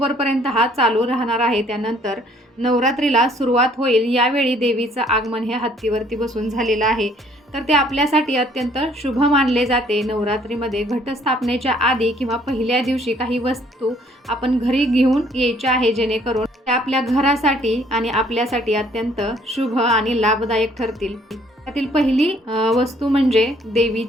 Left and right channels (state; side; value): normal; both; correlation 0.61